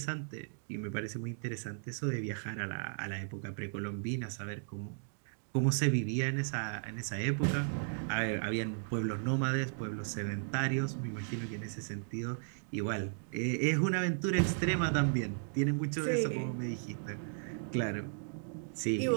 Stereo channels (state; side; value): silent; left; digital silence